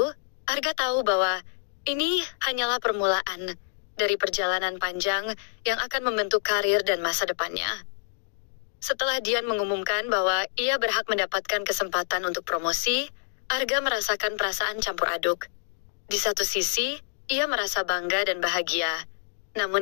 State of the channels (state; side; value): silent; right; digital silence